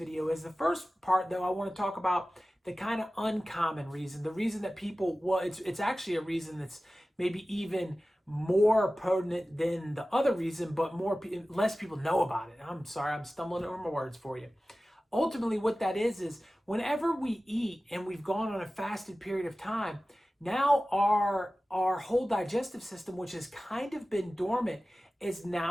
is. The first part, though, I want to talk about the kind of uncommon reason, the reason that people, well, it's actually a reason that's maybe even more potent than the other reason, but less people know about it. I'm sorry, I'm stumbling over my words for you. Ultimately, what that is whenever we eat and we've gone on a fasted period of time, now our whole digestive system, which has kind of been dormant, has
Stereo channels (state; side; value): normal; both; correlation 0.96